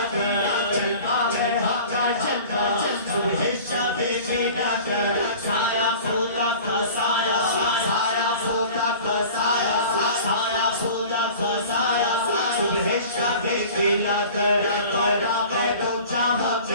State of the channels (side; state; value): both; inverted; correlation -0.42